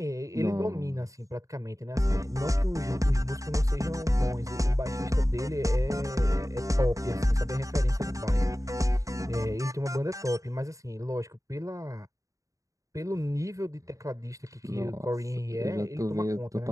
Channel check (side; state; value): left; late; 0.16 ms